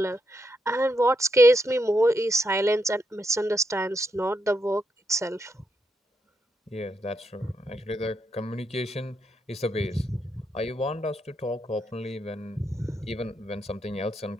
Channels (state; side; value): normal; both; correlation 0.81